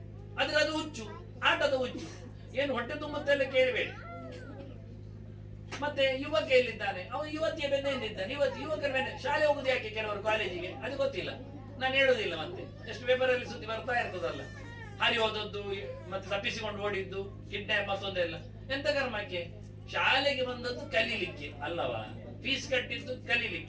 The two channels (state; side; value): identical; both; correlation 1.00